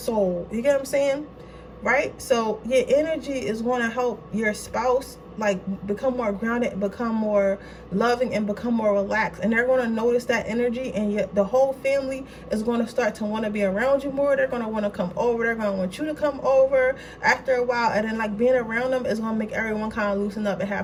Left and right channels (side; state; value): both; identical; correlation 1.00